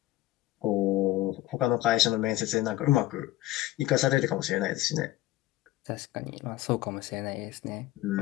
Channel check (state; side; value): quieter; right; 16.1 dB